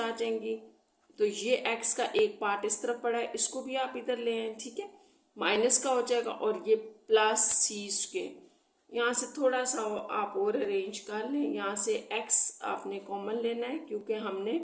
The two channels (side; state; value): both; identical; correlation 1.00